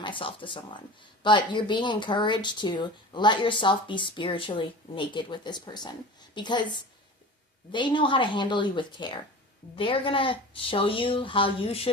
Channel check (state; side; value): normal; both; correlation 0.35